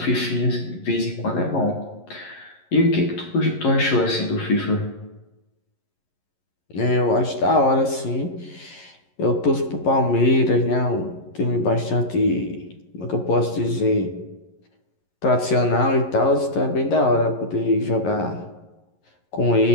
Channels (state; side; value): late; right; 11 ms